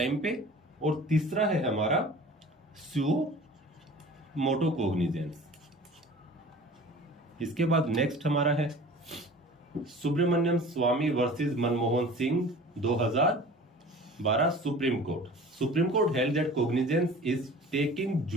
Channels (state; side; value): normal; both; correlation 0.42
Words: पे, और तीसरा है हमारा सुओ मोटो कोग्निजेंस। इसके बाद नेक्स्ट हमारा है Subramanian Swamy versus Manmohan Singh 2012 Supreme Court. Supreme Court held that cognizance is taking